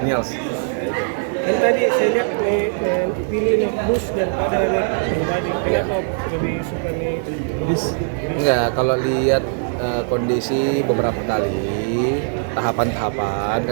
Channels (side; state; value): left; silent; digital silence